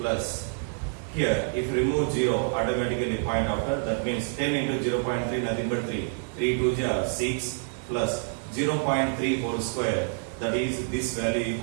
here if remove 0 automatically point after, that means 10 into 0.3 nothing but 3, 3 2 are 6 plus 0.3 whole square, that is this value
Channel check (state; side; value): silent; left; 60 dB below the other